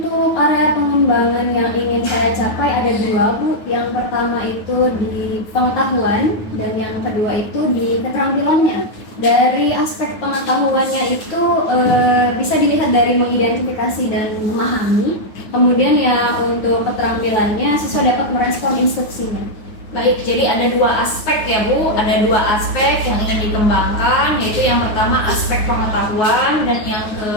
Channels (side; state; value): right; late; 9.5 ms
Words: area pengembangan yang ingin saya capai ada 2 Bu. Yang pertama itu di pengetahuan dan yang kedua itu di keterampilannya. Dari aspek pengetahuannya itu bisa dilihat dari mengidentifikasi dan memahami. Kemudian ya untuk keterampilannya siswa dapat merespon instruksinya. Baik, jadi ada 2 aspek ya Bu, ada 2 aspek yang ingin dikembangkan, yaitu yang pertama aspek pengetahuan dan yang